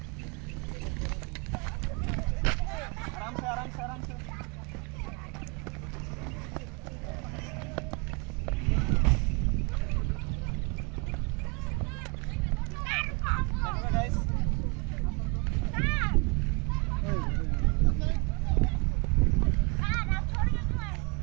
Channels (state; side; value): quieter; left; 30.5 dB